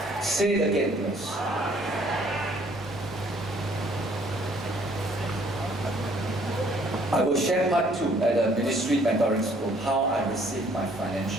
Say it again, please. I will share part 2 at the ministry mentoring school, how I received my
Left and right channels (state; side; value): normal; both; correlation 0.61